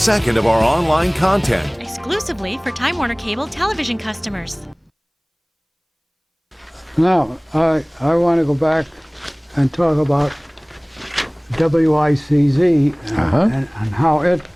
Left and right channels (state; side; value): identical; both; correlation 1.00